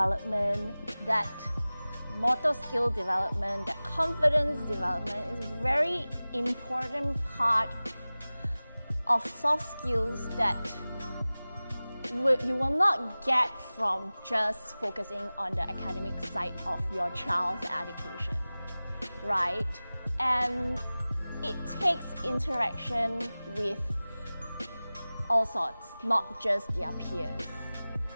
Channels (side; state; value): both; inverted; correlation -0.98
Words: that motor skill development, that confidence development is a very important part of soft skills that you will not get from just focusing on the academic side of your child's education, right? And it takes interaction with all sorts, not just their peers.